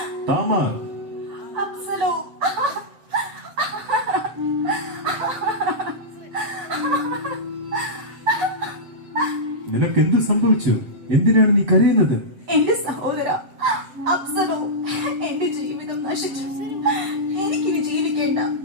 Tamar, അപ്സലോ, നിനക്കെന്ത് സംഭവിച്ചു? എന്തിനാണ് നീ കരയുന്നത്? എന്റെ സഹോദര അപ്സലോ, എന്റെ ജീവിതം നശിച്ചു. എനിക്കിനി ജീവിക്കേണ്ട,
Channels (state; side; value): late; left; 7.5 ms